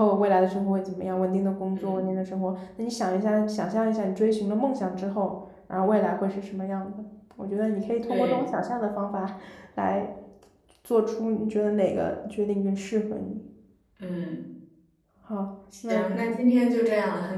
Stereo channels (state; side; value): identical; both; correlation 1.00